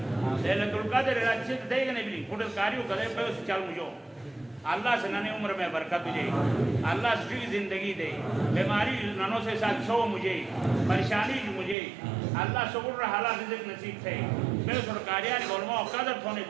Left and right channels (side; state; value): left; drops out; at 11.8 s